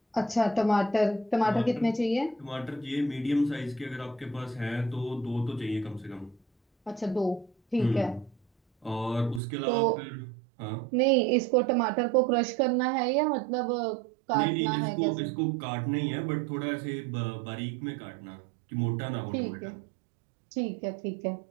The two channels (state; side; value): drops out; left; at 9.4 s